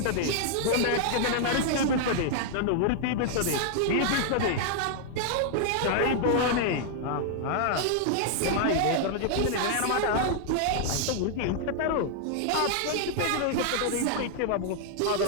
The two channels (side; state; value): both; different; correlation 0.00